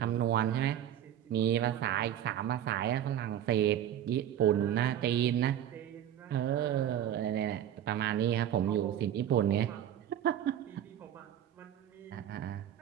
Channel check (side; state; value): left; quieter; 10.8 dB